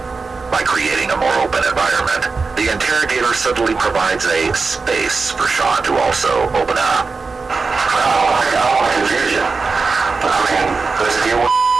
By creating a more open environment, the interrogator subtly provides a space for Sean to also open up. I don't want to confuse you. I mean, let's deal with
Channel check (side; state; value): left; quieter; 4.4 dB